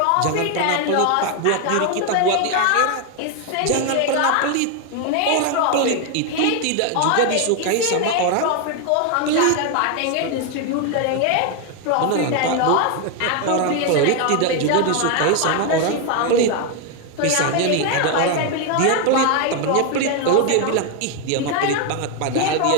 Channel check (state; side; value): different; both; correlation 0.01